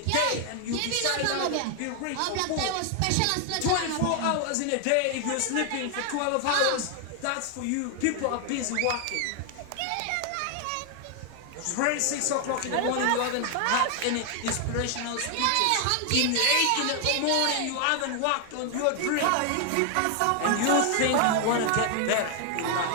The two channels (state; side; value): different; both; correlation 0.00